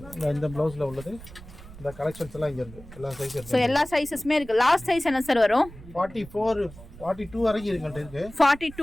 இந்த ப்ளவுஸில் உள்ளது இந்த கலெக்ஷன்ஸ் எல்லாம் இங்கே இருக்குது. எல்லா சைஸ் ஸோ எல்லா சைஸஸுமே இருக்குது. லாஸ்ட் சைஸ் என்ன சார் வரும்? 44, 42 வரைக்கும் இருக்கு.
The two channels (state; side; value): noise; right; rumble, 17 dB below the sound